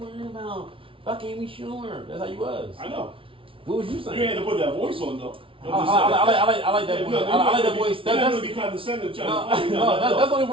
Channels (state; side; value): late; left; 0.25 ms